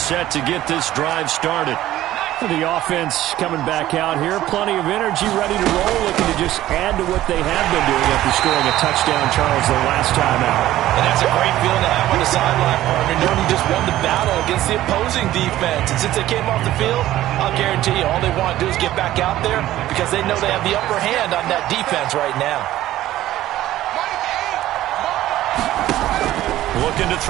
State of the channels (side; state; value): left; quieter; 14.3 dB